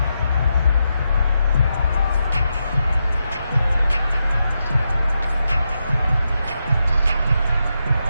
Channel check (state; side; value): inverted; both; correlation -0.85